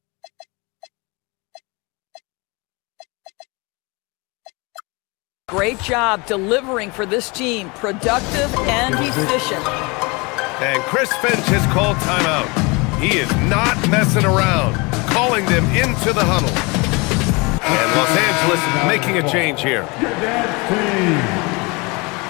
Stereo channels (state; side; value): quieter; right; 27.4 dB